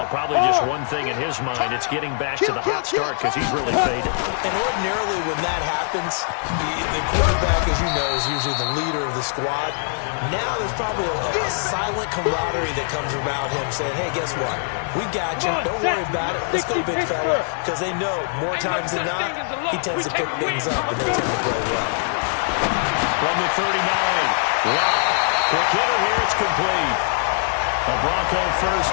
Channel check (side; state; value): right; silent; 64 dB below the other